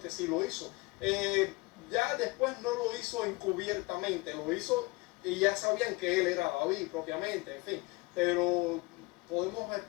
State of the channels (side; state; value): right; quieter; 24.3 dB